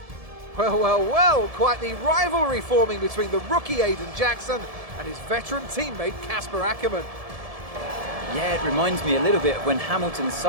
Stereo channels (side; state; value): left; late; 1.7 ms